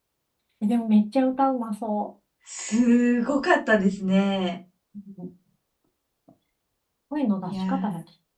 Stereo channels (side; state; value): both; identical; correlation 1.00